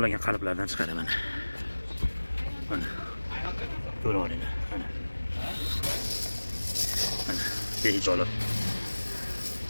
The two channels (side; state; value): both; inverted; correlation -1.00